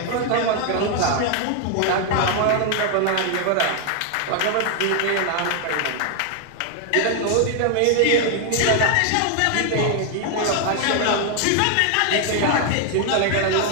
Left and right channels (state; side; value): different; both; correlation 0.00